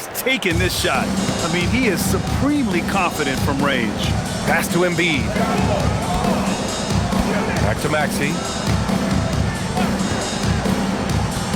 taking this shot. I mean, he is supremely confident from range. Pass to Embiid. Back to Maxey.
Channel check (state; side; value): identical; both; correlation 1.00